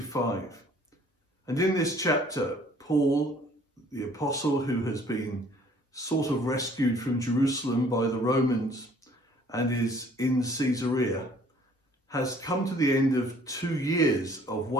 and in this chapter, Paul, the apostle who has been sort of rescued from Jerusalem by the Romans and is in Caesarea, has come to the end of 2 years of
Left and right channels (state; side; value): normal; both; correlation 0.56